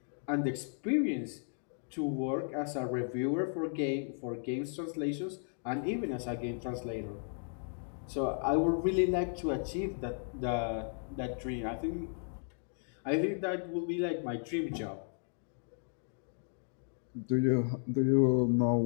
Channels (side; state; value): right; silent; digital silence